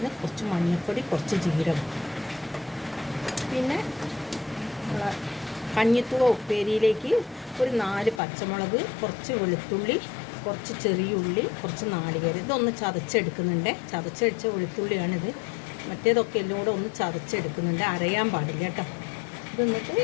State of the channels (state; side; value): drops out; right; at 8.2 s